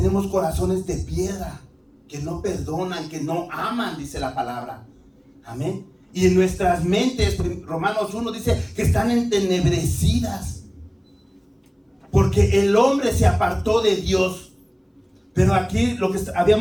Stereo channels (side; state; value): both; identical; correlation 1.00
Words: corazones de piedra, que no perdonan, que no aman, dice la palabra. Amén. Y en nuestras mentes, Romanos 1 dice que están entenebrecidas, porque el hombre se apartó de Dios. Pero aquí lo que